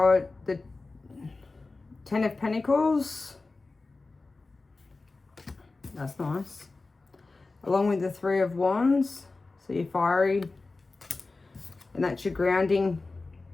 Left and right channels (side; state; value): right; quieter; 3.6 dB